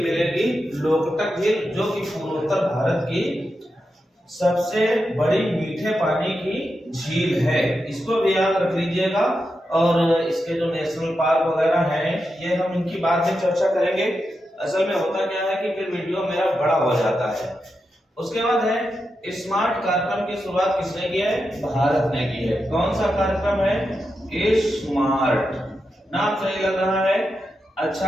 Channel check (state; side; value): normal; both; correlation 0.88